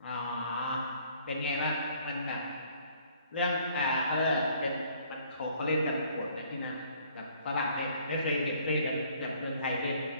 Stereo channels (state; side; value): inverted; both; correlation -0.59